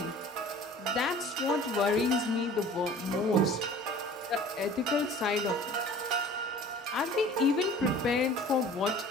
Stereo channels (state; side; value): normal; both; correlation 0.46